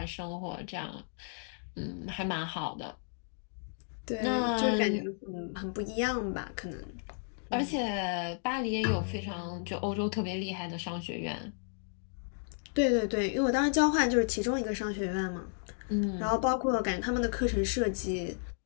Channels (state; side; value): silent; right; digital silence